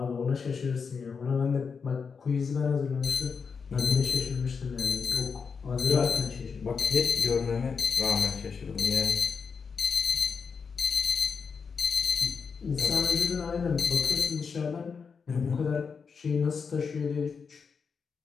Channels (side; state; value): right; quieter; 5.7 dB